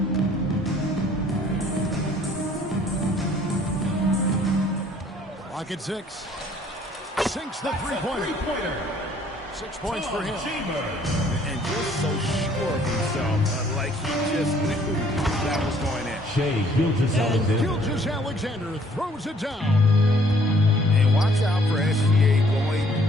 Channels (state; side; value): normal; both; correlation 0.60